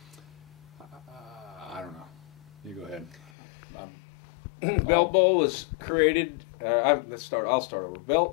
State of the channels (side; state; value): right; drops out; at 3.3 s